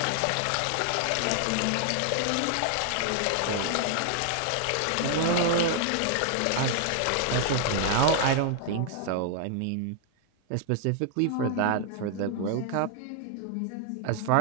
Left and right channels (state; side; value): different; both; correlation 0.00